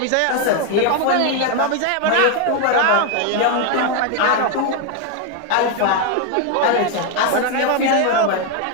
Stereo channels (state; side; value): different; both; correlation 0.01